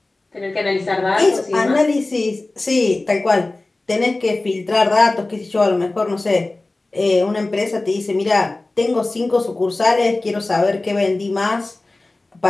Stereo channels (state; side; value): quieter; right; 3.0 dB